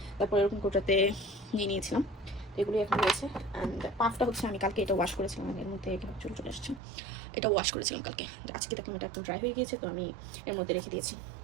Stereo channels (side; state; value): left; drops out; at 6.8 s